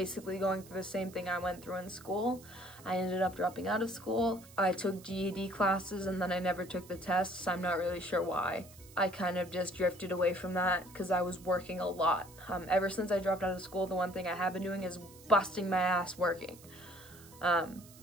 going through the same thing I went through in school. I ended up dropping out of school. I took GED classes and then I never took the tests. I'm not really sure why. I kind of just drifted away from that because I was working a lot. Ever since I dropped out of school, the one thing I have been doing is busting my ass working. I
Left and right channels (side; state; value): right; noise; hiss, 21 dB below the sound